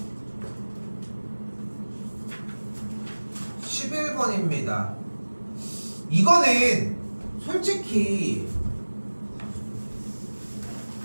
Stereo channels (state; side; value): inverted; both; correlation -1.00